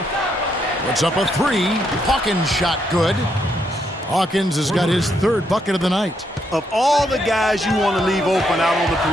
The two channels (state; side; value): normal; both; correlation 0.76